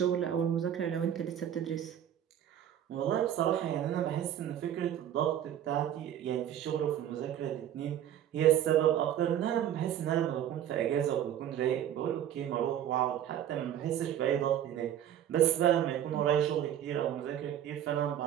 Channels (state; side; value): quieter; left; 10.6 dB